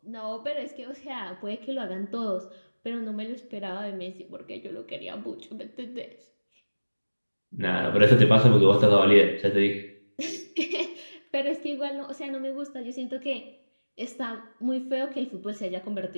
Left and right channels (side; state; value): both; inverted; correlation -1.00